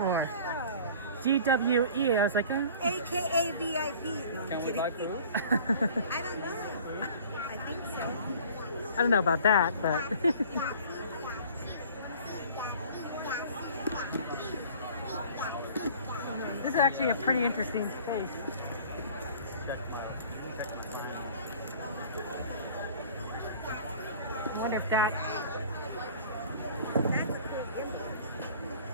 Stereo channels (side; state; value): both; inverted; correlation -0.47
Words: GWE. I was like, AKA VIP. No, I'm kidding. I don't know. I think so. I don't know about that, but. This is actually a pretty interesting space. I wonder if that.